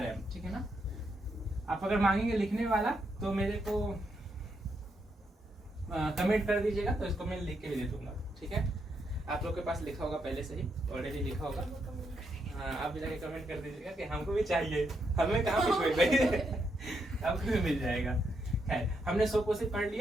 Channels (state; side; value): normal; both; correlation 0.80